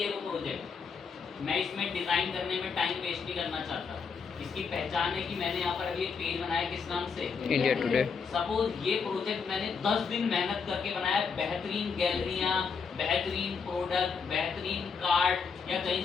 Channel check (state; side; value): quieter; right; 5.6 dB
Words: है वो प्रोजेक्ट। मैं इसमें डिजाइन करने में टाइम वेस्ट नहीं करना चाहता। इसकी पहचान है कि मैंने यहाँ पर अभी एक पेज बनाया, किस नाम से? India today. सपोज ये प्रोजेक्ट मैंने 10 दिन मेहनत करके बनाया, बेहतरीन गैलरियाँ, बेहतरीन प्रोडक्ट, बेहतरीन कार्ड या कहीं